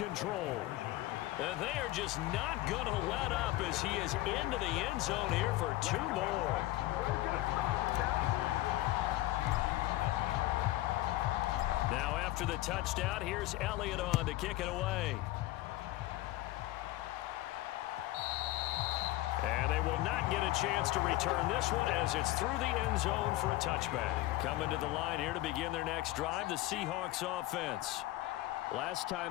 And they are just not going to let up as he is into the end zone here for 2 more. Now after the touchdown, here's Elliott on to kick it away. And they will not get a chance to return this one as it's through the end zone for a touchback. Coming to the line here to begin their next drive, the Seahawks offense. Last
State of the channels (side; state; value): right; quieter; 17.0 dB